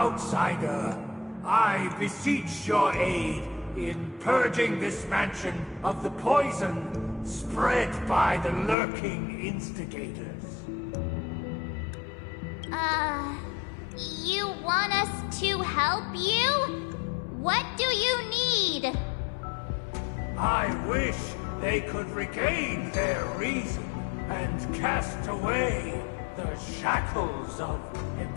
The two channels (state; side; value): drops out; right; at 8.8 s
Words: I beseech your aid in purging this mansion of the poison spread by the lurking instigators. You want us to help you? What do you need? I wish they could regain their reason and cast away the shackles of